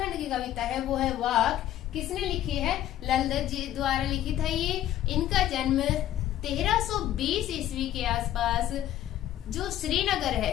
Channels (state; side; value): quieter; right; 12.5 dB